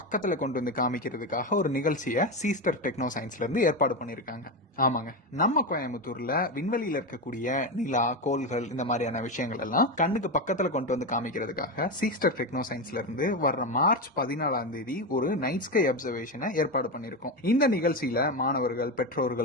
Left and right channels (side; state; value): both; normal; correlation 0.15